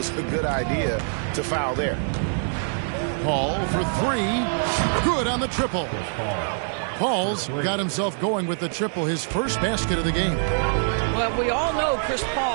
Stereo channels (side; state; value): left; silent; digital silence